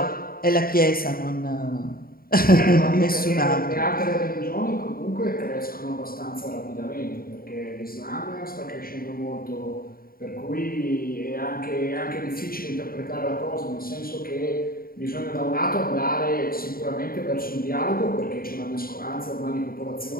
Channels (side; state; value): right; late; 0.43 ms